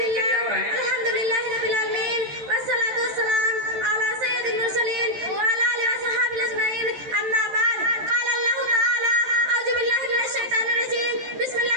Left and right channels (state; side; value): late; left; 14 ms